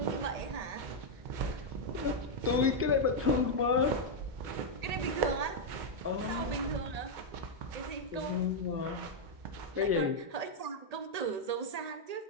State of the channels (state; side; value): late; left; 1.8 ms